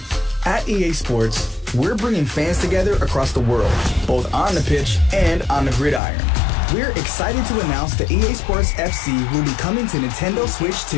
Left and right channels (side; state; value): right; drops out; at 6.0 s